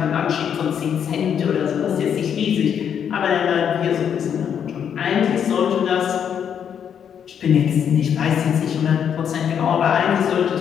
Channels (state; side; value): quieter; right; 8.3 dB